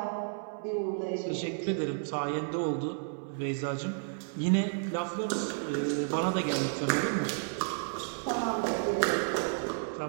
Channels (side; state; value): left; silent; 56 dB below the other